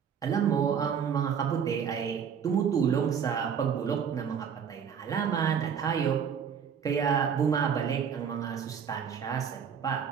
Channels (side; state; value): left; quieter; 7.4 dB